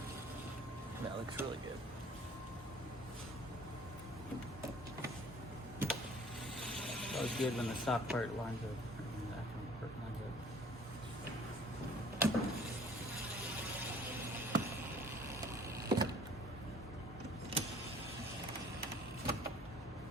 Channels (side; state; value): both; normal; correlation 0.53